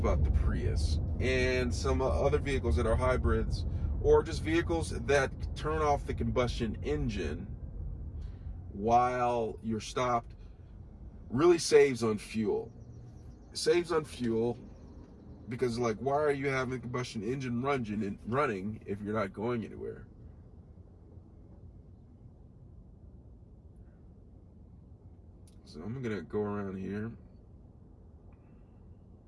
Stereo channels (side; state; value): both; identical; correlation 1.00